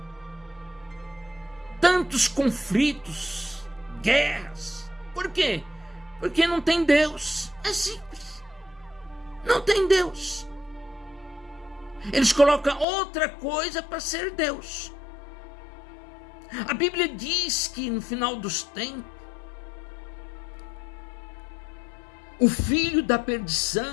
tantos conflitos, guerras? Por quê? Porque não tem Deus. É simples. Não tem Deus. Eles colocam outra coisa para ser Deus. A Bíblia diz que no final dos tempos, o filho da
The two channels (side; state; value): right; drops out; at 12.9 s